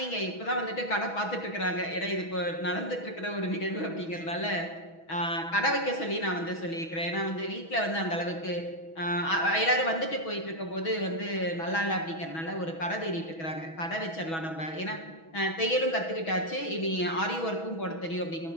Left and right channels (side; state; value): right; late; 6.2 ms